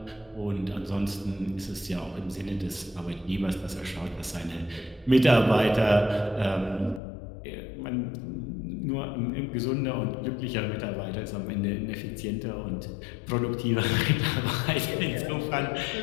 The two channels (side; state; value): right; drops out; at 7.0 s